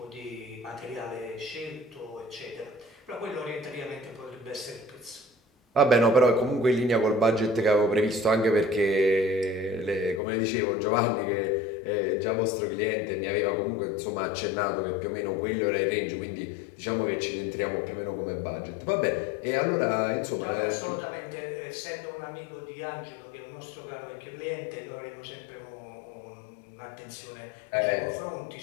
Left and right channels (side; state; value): right; drops out; at 10.2 s